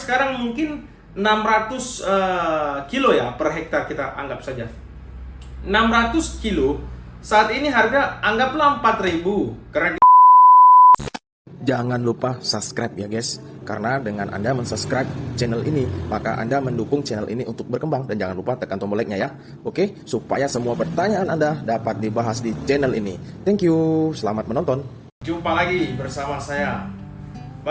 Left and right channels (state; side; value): identical; both; correlation 1.00